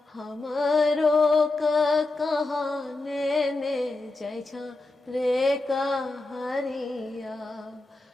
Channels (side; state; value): right; quieter; 3.1 dB